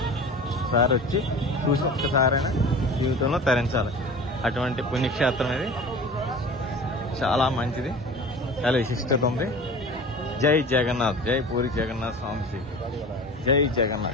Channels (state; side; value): normal; both; correlation 0.37